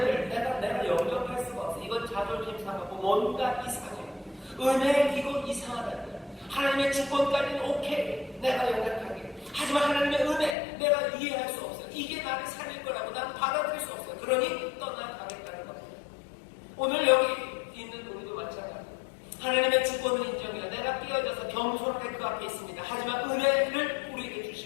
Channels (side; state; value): right; drops out; at 10.6 s